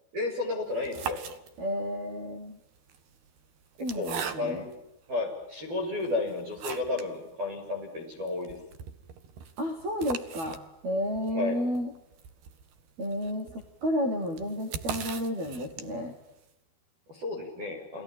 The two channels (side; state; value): left; late; 12 ms